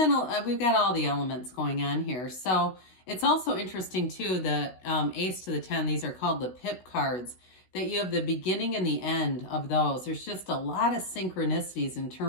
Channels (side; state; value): right; late; 16 ms